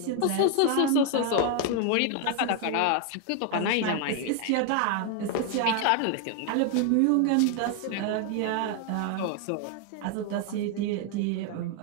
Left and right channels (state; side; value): different; both; correlation 0.00